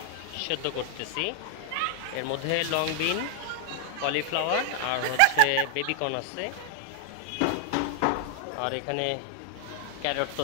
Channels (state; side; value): different; both; correlation 0.00